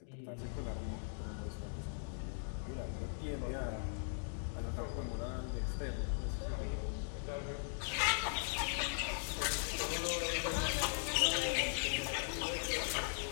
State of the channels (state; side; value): silent; right; digital silence